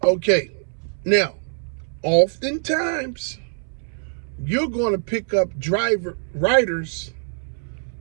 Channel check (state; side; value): silent; left; 63 dB below the other